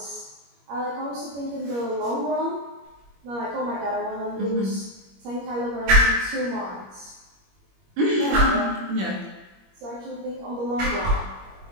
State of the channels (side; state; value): left; late; 21 ms